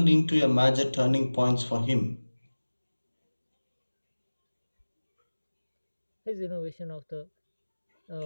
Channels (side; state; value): both; inverted; correlation -1.00